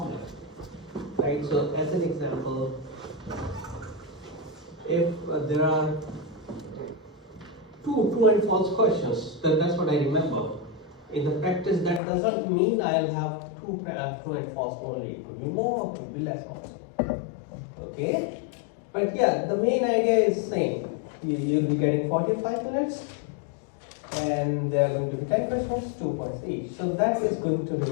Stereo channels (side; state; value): right; drops out; at 12.0 s